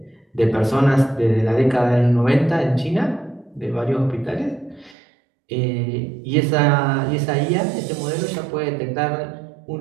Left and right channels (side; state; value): left; drops out; at 5.0 s